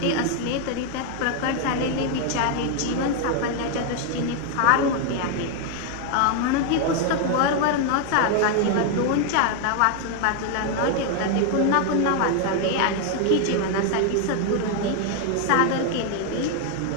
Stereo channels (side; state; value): both; different; correlation 0.01